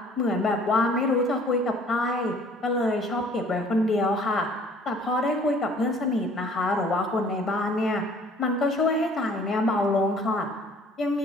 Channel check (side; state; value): both; normal; correlation 0.55